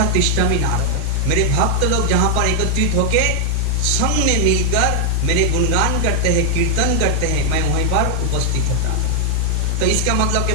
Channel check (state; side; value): different; both; correlation -0.01